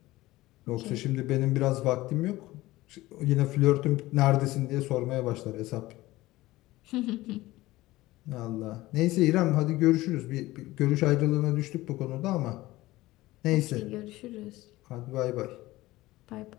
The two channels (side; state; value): right; quieter; 18.1 dB